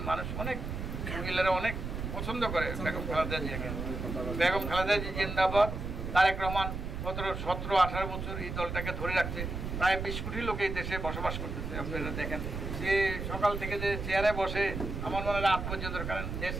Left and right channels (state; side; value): noise; right; rumble, 5 dB below the sound